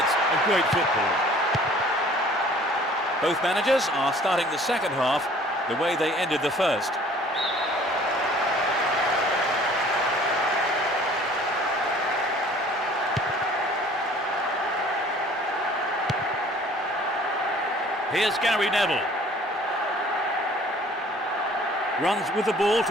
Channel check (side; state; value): both; normal; correlation 0.52